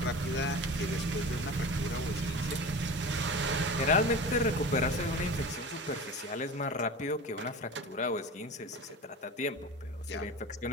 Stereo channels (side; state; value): both; normal; correlation 0.32